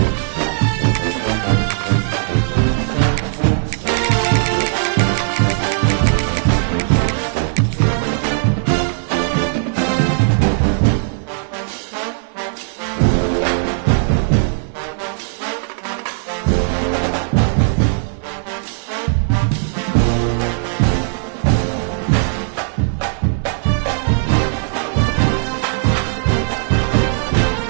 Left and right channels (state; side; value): silent; left; 59 dB below the other